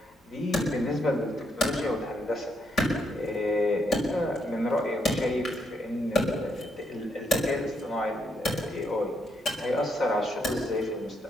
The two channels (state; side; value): normal; both; correlation 0.76